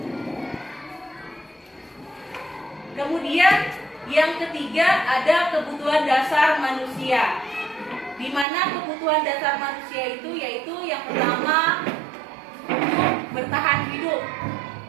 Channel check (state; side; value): drops out; left; at 8.5 s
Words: Kemudian yang ketiga ada kebutuhan dasar manusia, di mana kebutuhan dasar manusia itu yaitu yang pertama bertahan hidup,